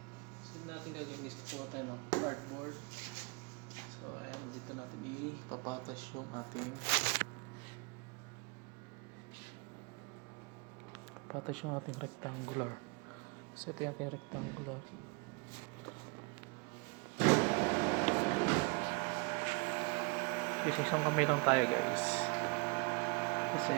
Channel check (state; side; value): quieter; left; 31.4 dB